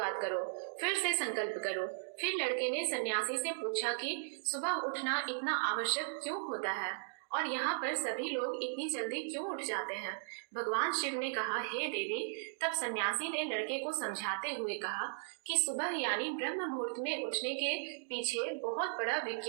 करो, फिर से संकल्प करो। फिर लड़के ने सन्यासी से पूछा कि सुबह उठना इतना आवश्यक क्यों होता है और यहाँ पर सभी लोग इतनी जल्दी क्यों उठ जाते हैं? भगवान शिव ने कहा, हे देवी। तब सन्यासी ने लड़के को समझाते हुए कहा कि सुबह यानी ब्रह्म मुहूर्त में उठने के पीछे बहुत बड़ा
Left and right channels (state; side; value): silent; left; digital silence